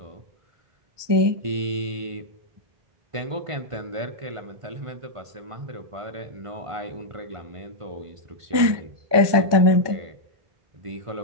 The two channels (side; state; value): left; late; 1.2 ms